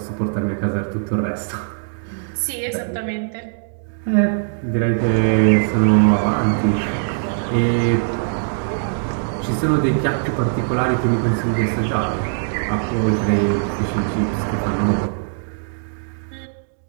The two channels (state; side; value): silent; left; digital silence